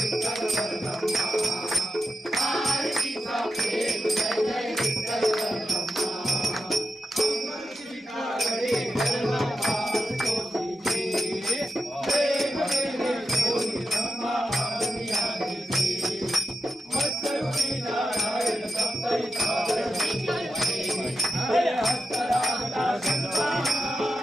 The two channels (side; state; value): both; normal; correlation 0.87